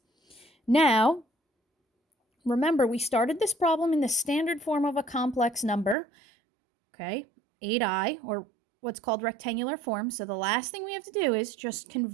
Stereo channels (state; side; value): drops out; left; at 6.0 s